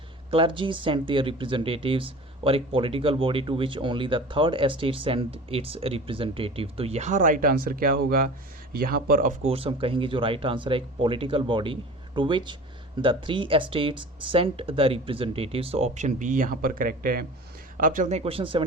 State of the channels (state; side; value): normal; both; correlation 0.38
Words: clergy sent their representatives, और एक political body to which only the 3rd estate sent its representative. तो यहाँ राइट आंसर क्या होगा, यहाँ पर ऑफ कोर्स हम कहेंगे जो राइट आंसर है एक political body to which the 3 estates sent the representatives. तो ऑप्शन बी यहाँ पर करेक्ट है। अब चलते हैं क्वेश्चन